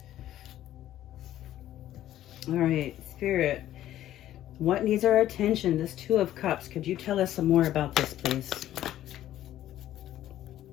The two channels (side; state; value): right; quieter; 12.9 dB